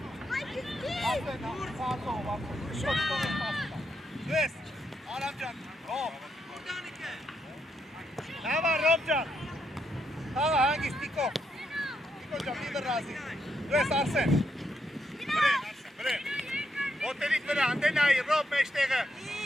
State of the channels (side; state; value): both; normal; correlation 0.79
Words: Ասեն, խաղացող, Դուես, Արամ ջան, Ռոբ։ Լավա, Ռոբ ջան։ Խաղա, հանգիստ, Տիկո։ Տիկո ջան, մի վրազի։ Դուես, Արսեն։ Բրեն, Արսեն, բրեն։ Ոտերից վրա, անդենայի, Ռոբ մեջտեղը,